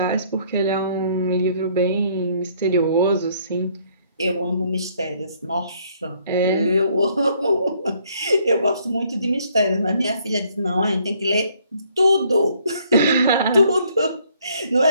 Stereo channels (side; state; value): both; inverted; correlation -0.65